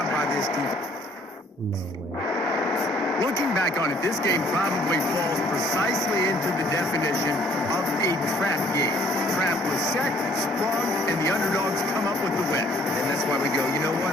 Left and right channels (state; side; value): normal; both; correlation 0.61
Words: by this defense. No way. Looking back on it, this game probably falls precisely into the definition of a trap game. Trap was set, sprung, and the underdogs come up with the win. And that's why we go, you know